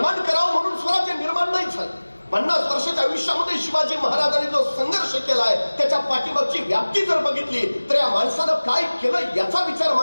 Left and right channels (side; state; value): both; inverted; correlation -1.00